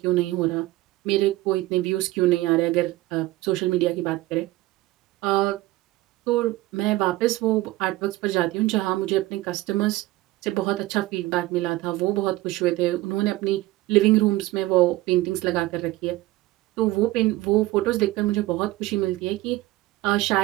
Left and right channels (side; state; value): left; quieter; 18.1 dB